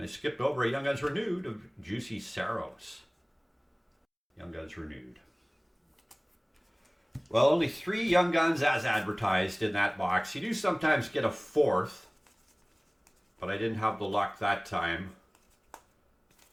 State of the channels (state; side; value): identical; both; correlation 1.00